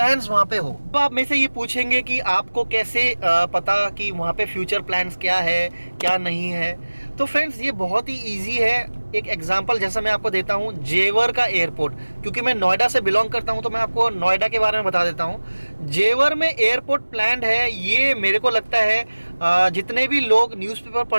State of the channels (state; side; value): inverted; both; correlation -1.00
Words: वहाँ पे हो। तो आप में से ये पूछेंगे कि आपको कैसे पता कि वहाँ पे फ्यूचर प्लान्स क्या है क्या नहीं है? तो फ्रेंड्स ये बहुत ही ईजी है। एक एग्जांपल जैसा मैं आपको देता हूँ, जेवर का एयरपोर्ट, क्योंकि मैं नोएडा से बिलोंग करता हूँ तो मैं आपको नोएडा के बारे में बता देता हूँ। जेवर में एयरपोर्ट प्लान्ड है, ये मेरे को लगता है जितने भी लोग न्यूज़पेपर